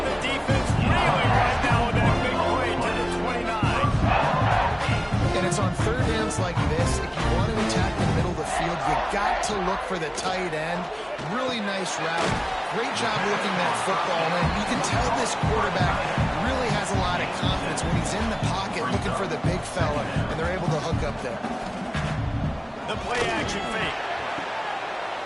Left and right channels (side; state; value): both; identical; correlation 1.00